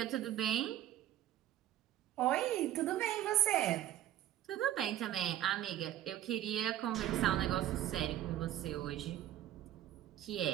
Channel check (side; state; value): left; quieter; 12.5 dB